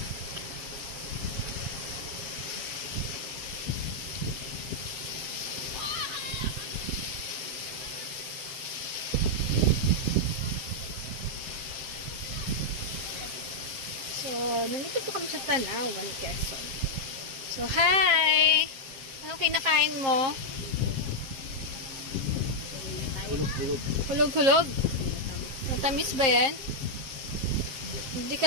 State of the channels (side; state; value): left; late; 7.5 ms